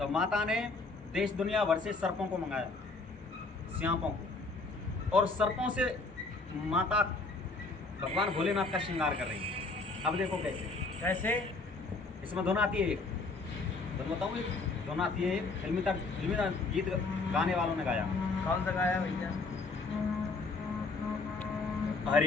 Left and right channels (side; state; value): right; quieter; 3.7 dB